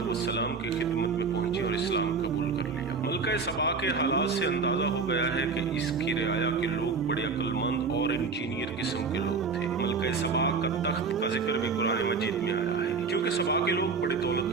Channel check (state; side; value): quieter; left; 4.8 dB